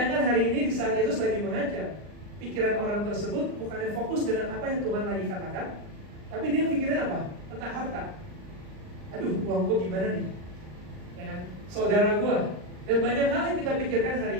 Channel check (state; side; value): late; left; 39 ms